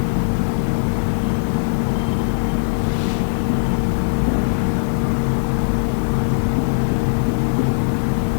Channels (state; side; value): silent; right; 66 dB below the other